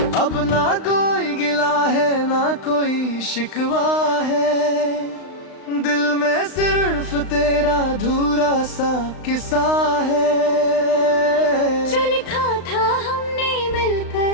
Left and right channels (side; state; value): right; late; 35 ms